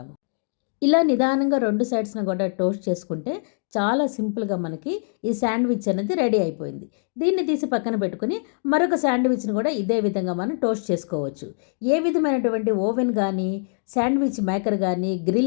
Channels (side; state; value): right; silent; digital silence